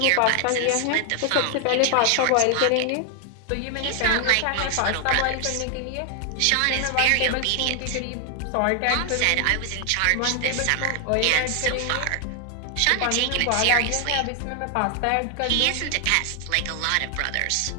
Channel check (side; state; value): both; different; correlation 0.00